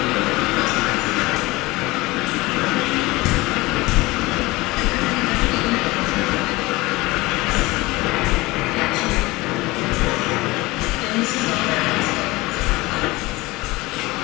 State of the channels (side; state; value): right; quieter; 21.3 dB